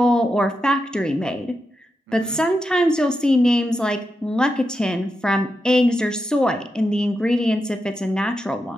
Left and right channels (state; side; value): normal; both; correlation 0.87